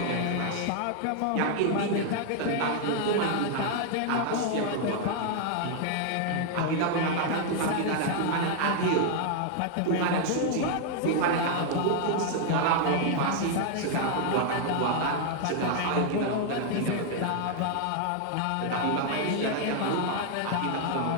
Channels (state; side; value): different; both; correlation 0.00